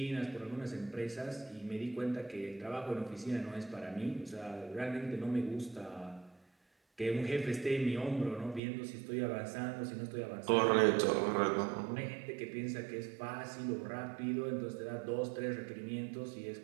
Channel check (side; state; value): left; drops out; at 8.6 s